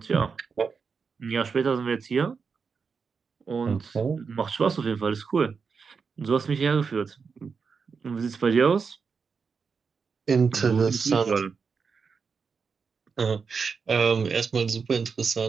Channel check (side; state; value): left; quieter; 5.5 dB